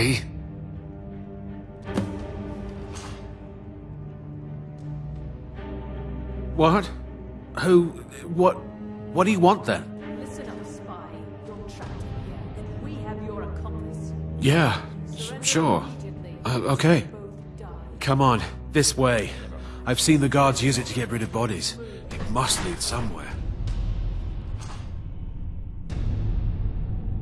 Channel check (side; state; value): both; identical; correlation 1.00